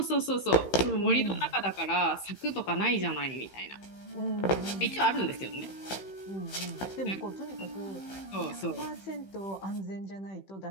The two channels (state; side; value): late; right; 15 ms